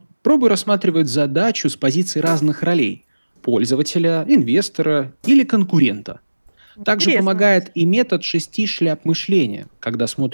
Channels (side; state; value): both; inverted; correlation -1.00